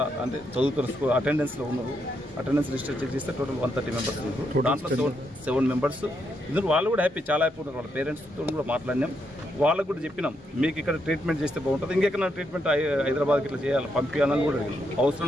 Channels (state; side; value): normal; both; correlation 0.79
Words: అంటే చదువుతున్న స్కూల్ అటెండెన్స్లో ఉన్నారు. అటెండెన్స్ లిస్ట్ చెక్ చేస్తే టోటల్ 130 మెంబర్స్ ఉన్నారు. దాంట్లో 7 మెంబర్స్ ఇందులో వాళ్ళు కూడా హ్యాపీ, చాలా హ్యాపీ ఉన్నారు. వాళ్ళ పేరెంట్స్తో కూడా మాట్లాడినాం. వాళ్ళకు కూడా చెప్పినాం మీకు ఇక్కడ ట్రీట్మెంట్ చేస్తే బాగుంటుంది, ఇంకెక్కడ ట్రీట్మెంట్ హైదరాబాద్కి ఇట్లా చేయాలి పంపించాలని కూడా అడిగినాం.